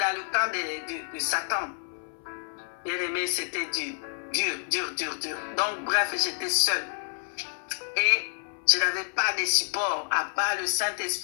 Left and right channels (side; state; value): right; silent; 59 dB below the other